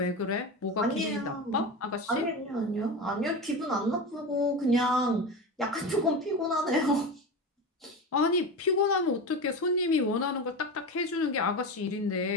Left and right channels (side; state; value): both; normal; correlation 0.24